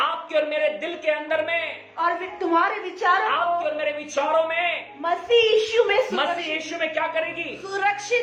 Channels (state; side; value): identical; both; correlation 1.00